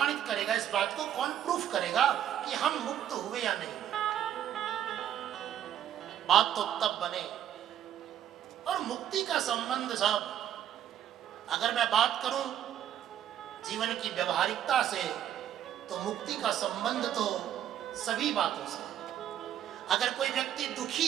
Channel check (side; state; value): left; quieter; 10.6 dB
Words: करेगा इस बात को, कौन प्रूफ करेगा कि हम मुक्त हुए या नहीं? बात तो तब बने। और मुक्ति का संबंध साहब, अगर मैं बात करूं जीवन की व्यवहारिकता से, तो मुक्ति का संबंध तो सभी बातों से है। अगर कोई व्यक्ति दुखी